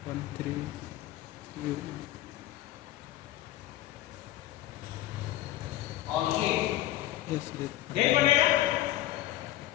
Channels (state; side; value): quieter; right; 14.7 dB